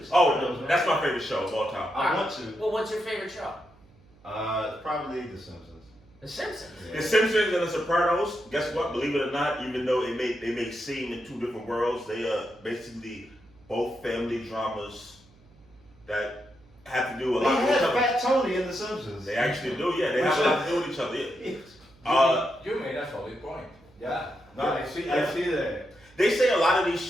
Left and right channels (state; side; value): noise; right; hum, 28 dB below the sound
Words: Oh, Sopranos, man. that's my favorite show of all time. I want to. Well, what's your favorite show? Probably The Simpsons. The Simpsons. The Simpsons and The Sopranos. Guess what? Believe it or not, even though they may seem in 2 different worlds, they are basically both family dramas that have to do a They lot with had each other. Fat Tony in The Simpsons. They actually do, yeah. They have a lot to do with each other. Yeah. You made a solid point. Yeah. No, Yeah. I see that. They say a lot of these